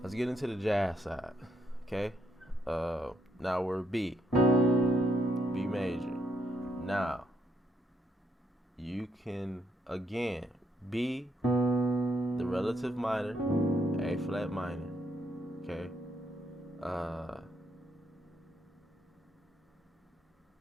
Let's get into the jazz side. Okay? Now we're B major. Now, you can again B, the relative minor, A flat minor. Okay?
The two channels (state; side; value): normal; both; correlation 0.74